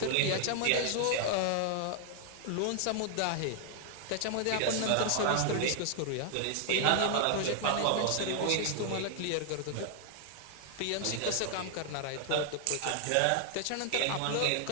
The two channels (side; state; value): both; different; correlation 0.00